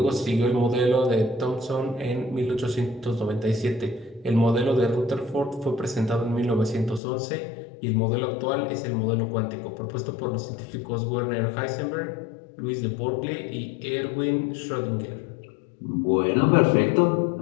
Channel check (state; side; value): drops out; right; at 7.0 s